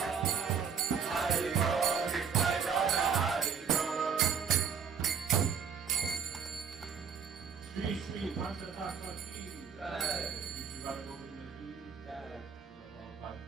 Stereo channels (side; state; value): left; quieter; 6.7 dB